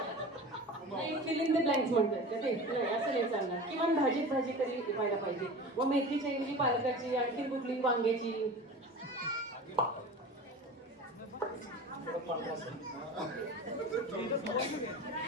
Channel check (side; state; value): both; normal; correlation 0.34